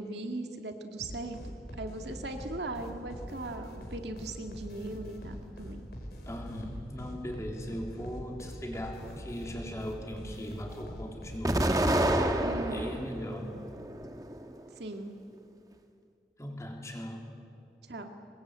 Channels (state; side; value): normal; both; correlation 0.70